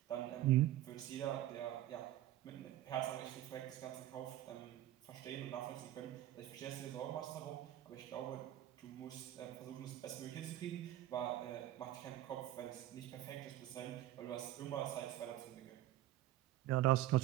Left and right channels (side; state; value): left; quieter; 13.9 dB